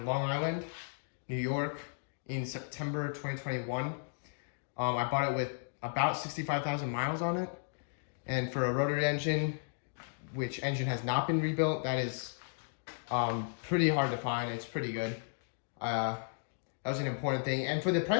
Long Island, New York in September 2021. I bought it with about 65,000 miles on it. And for a rotary engine, which engine has not been rebuilt, that is pretty hard to find. It's pretty good. That was an important thing. And for the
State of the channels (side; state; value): right; silent; digital silence